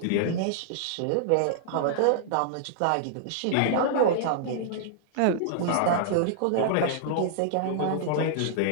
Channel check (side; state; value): both; different; correlation -0.01